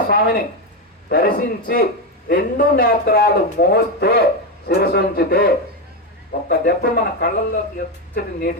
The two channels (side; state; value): both; normal; correlation 0.10